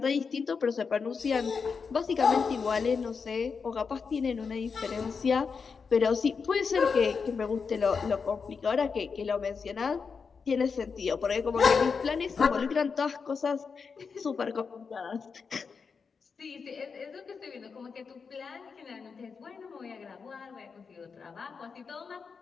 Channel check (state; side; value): quieter; right; 5.5 dB